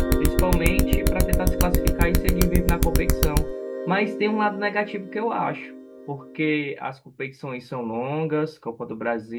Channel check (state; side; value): identical; both; correlation 1.00